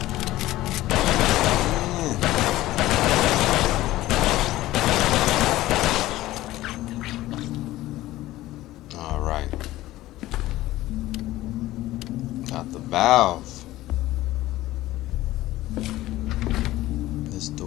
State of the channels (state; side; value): quieter; right; 16.3 dB